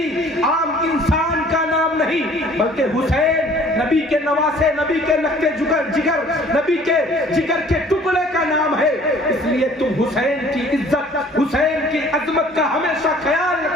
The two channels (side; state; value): both; normal; correlation 0.53